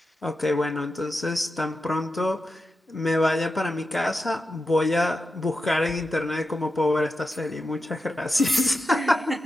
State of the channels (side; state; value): both; normal; correlation 0.90